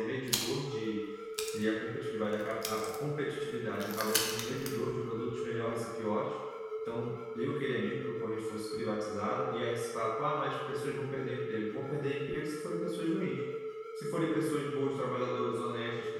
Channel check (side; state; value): both; identical; correlation 1.00